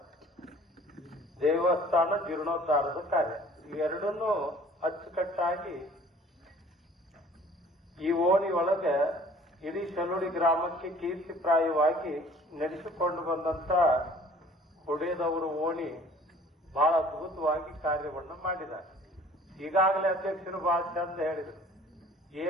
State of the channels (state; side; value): normal; both; correlation 0.52